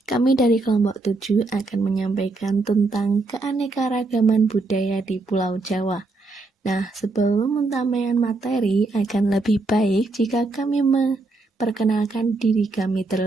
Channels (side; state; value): left; quieter; 3.3 dB